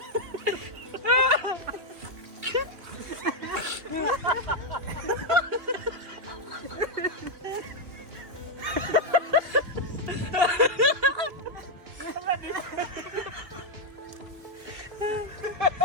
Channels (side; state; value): left; late; 3.1 ms